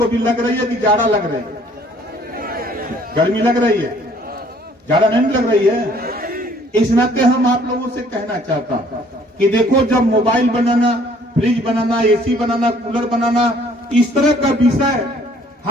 भी लग रही है कि जाड़ा लग रही है? गर्मी लग रही है, जाड़ा नहीं लग रही है। इस नाते हम आप लोगों से कहना चाहता हूं कि देखो, जब मोबाइल बनाना, फ्रिज बनाना, एसी बनाना, कूलर बनाना, इस तरह का विषय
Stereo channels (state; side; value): normal; both; correlation 0.59